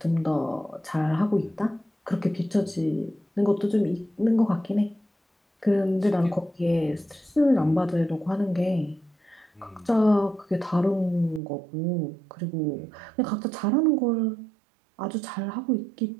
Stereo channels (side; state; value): left; drops out; at 11.4 s